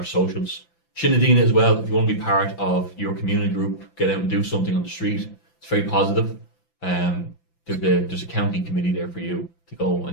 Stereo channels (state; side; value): late; right; 5.9 ms